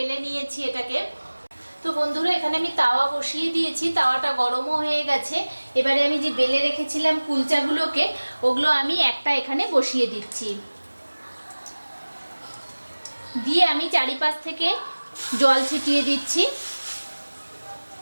নিয়েছি এটাকে। তো বন্ধুরা এখানে আমি তাওয়া বসিয়ে দিয়েছি, তাওয়াটা গরমও হয়ে গেছে। এবারে আমি যে বেলে রেখেছিলাম কুলচাগুলোকে, ওগুলো আমি একটা এখানে বসিয়ে দিচ্ছি। দিয়ে আমি চারিপাশ থেকে জল ছিটিয়ে দিচ্ছি।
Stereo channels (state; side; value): inverted; both; correlation -1.00